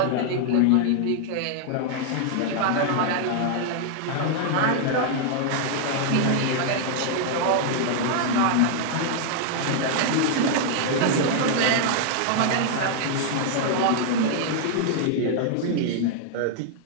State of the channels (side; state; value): both; different; correlation 0.00